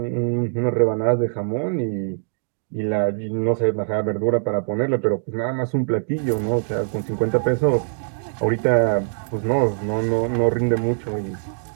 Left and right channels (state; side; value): silent; left; digital silence